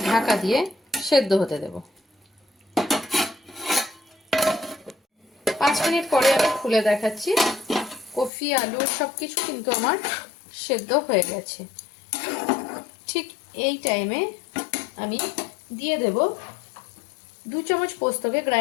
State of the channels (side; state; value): right; drops out; at 8.3 s